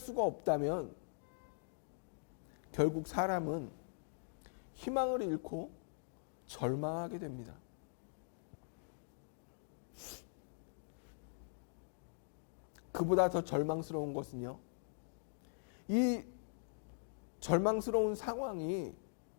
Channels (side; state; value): right; silent; digital silence